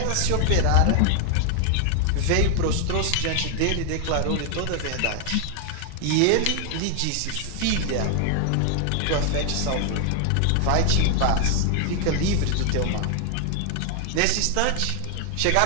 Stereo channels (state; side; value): different; both; correlation 0.00